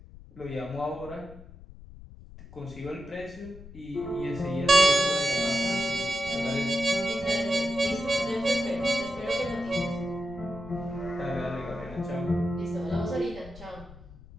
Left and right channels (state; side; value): noise; left; rumble, 18 dB below the sound